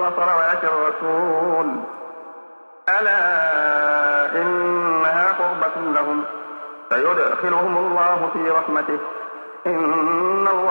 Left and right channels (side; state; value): both; inverted; correlation -1.00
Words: الرسول ألا إنها قربة لهم فيدخلهم الله في رحمته إن